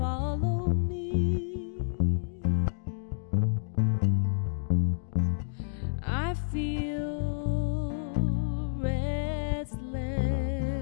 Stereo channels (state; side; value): silent; right; digital silence